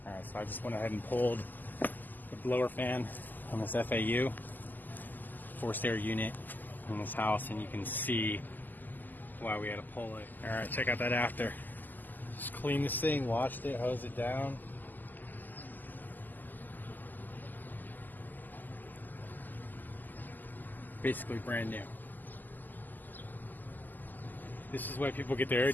Alright, so I just went ahead and pulled the blower fan on this FAU, forced air unit in this house, and you can see why we had to pull it. Alright, check out that after. Just cleaned this thing, washed it, hosed it down. Basically brand new. This is why people get their air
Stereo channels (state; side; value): late; right; 0.086 ms